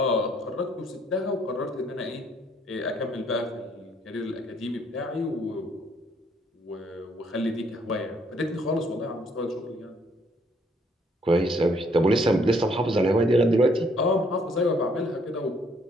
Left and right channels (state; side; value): normal; both; correlation 0.67